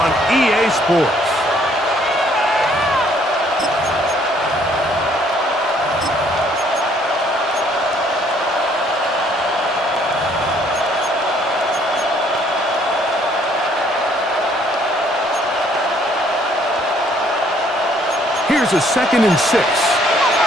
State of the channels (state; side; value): normal; both; correlation 0.64